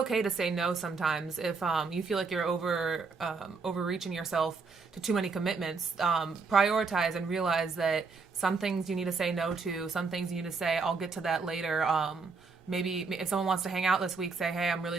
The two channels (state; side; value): quieter; left; 4.6 dB